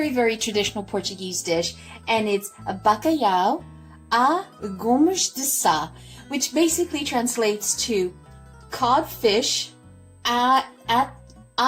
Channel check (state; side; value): identical; both; correlation 1.00